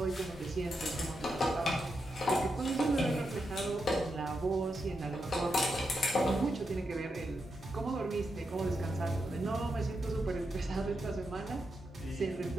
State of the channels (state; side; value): normal; both; correlation 0.85